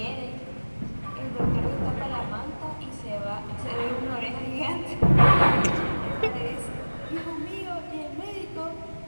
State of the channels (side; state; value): both; inverted; correlation -1.00